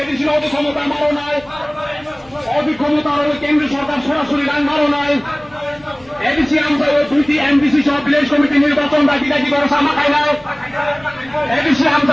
এডিশনাল অধিক্ষমতা মারো নয় অধিক্ষমতার কেন্দ্র সরকার সরাসরি রান মারো নয় এডিসি আমরা 2টি এমডিসি সহ ভিলেজ কমিটি নির্বাচন দাবি ভরসা মাখায় নয় এডিসি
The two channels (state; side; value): noise; left; hum, 29 dB below the sound